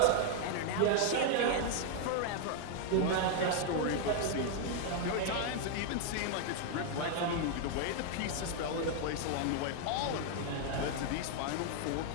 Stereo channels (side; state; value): both; different; correlation 0.00